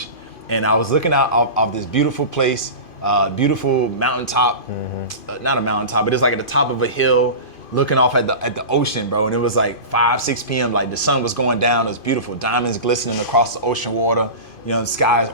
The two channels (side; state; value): right; late; 2.5 ms